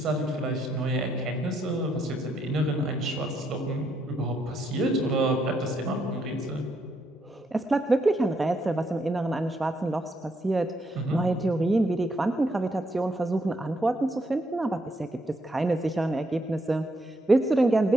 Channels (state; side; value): normal; both; correlation 0.76